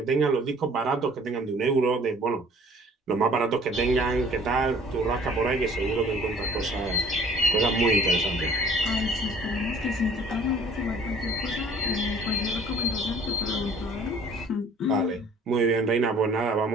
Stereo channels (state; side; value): normal; both; correlation 0.52